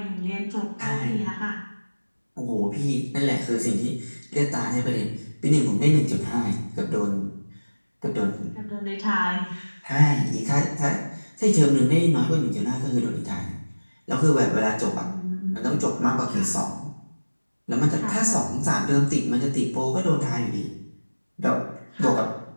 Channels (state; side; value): inverted; both; correlation -1.00